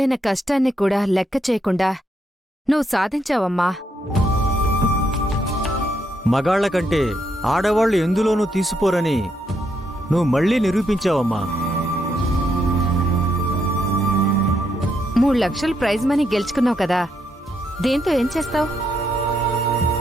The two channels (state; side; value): normal; both; correlation 0.77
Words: కష్టాన్ని కూడా లెక్క చేయకుండా నువ్వు సాధించావమ్మా. మగాళ్ల కంటే ఆడవాళ్లు ఎందులోనూ తీసిపోరని నువ్వు మళ్ళీ నిరూపించావమ్మా. 3 లక్షలు ప్రైజ్ మనీ గెలుచుకున్నావు కదా, దీంతో ఏం చేస్తావు?